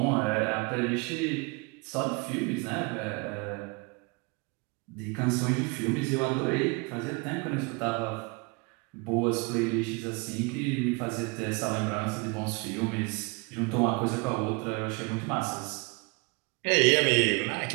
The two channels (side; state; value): left; quieter; 29.3 dB